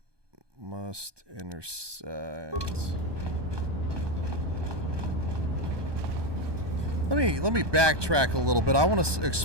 Must intersect. Let me backtrack a little bit. I want to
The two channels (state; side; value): late; left; 1.2 ms